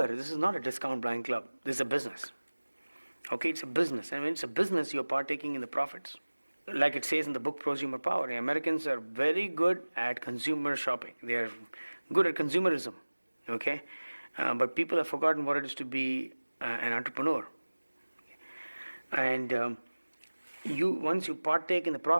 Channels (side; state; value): both; inverted; correlation -1.00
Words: this is not a discount blind club. This is a business. Okay, it's a business, and when it's a business, you're partaking in the profits. Like it says in the book Prosumer Power, the Americans are very good at consumer shopping. They are good at consumerism. Okay. But people have forgotten what it is to be an entrepreneur. And once you partake in the